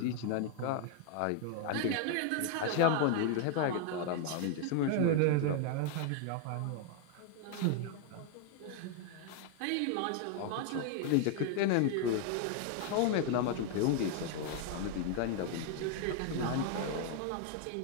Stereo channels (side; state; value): both; different; correlation 0.00